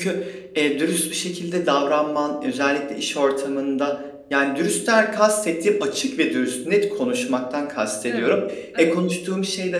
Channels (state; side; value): identical; both; correlation 1.00